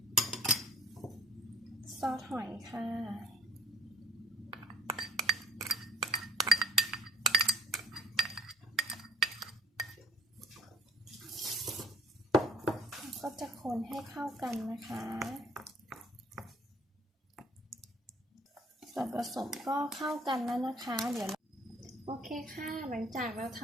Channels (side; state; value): both; normal; correlation 0.56